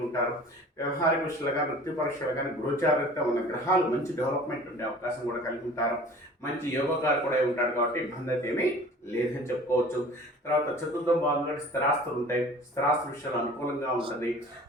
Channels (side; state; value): both; normal; correlation 0.45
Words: ఉంటారు. వ్యవహారిక విషయాలు కానీ, వృత్తి పరీక్షలు కానీ గోచారిత ఉన్న గ్రహాలు మంచి డెవలప్మెంట్ ఉండే అవకాశం కూడా కలిగి ఉంటారు. మంచి యోగకారు కూడా ఉంటాడు కాబట్టి ఇబ్బంది అయితే ఏమీ లేదని చెప్పుకోవచ్చు. తర్వాత చతుర్థం భాగంగా స్థిరాస్తులు ఉంటాయి, స్థిరాస్తుల విషయాలు అనుకూలంగా ఉంటుంది.